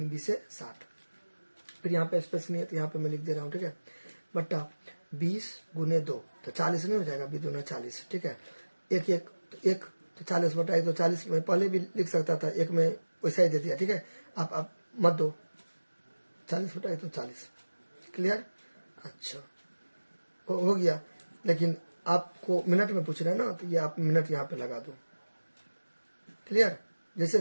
बीस 60। फिर यहाँ पे स्पेस नहीं है तो यहाँ पे मैं लिख दे रहा हूँ, ठीक है, बट्टा 20 गुने 2, तो 40 नहीं हो जाएगा, 2 दूना 40, ठीक है। 1 तो 40 बटा 1 तो 40, मैं पहले भी लिख सकता था, 1 में वैसा ही दे दिया, ठीक है। आप मत दो, 40 बटा 1 तो 40, क्लियर। अच्छा, हो गया, लेकिन आपको मिनट में पूछ रहे हैं ना, तो ये आप मिनट यहाँ पे लगा दो, क्लियर।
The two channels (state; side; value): inverted; both; correlation -1.00